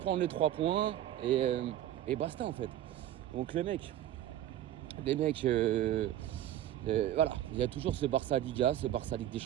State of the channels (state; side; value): quieter; left; 12.2 dB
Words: prendre les 3 points et basta en fait. Donc les mecs, voilà, il y a toujours ce Barça Liga, ce Barça Ligue des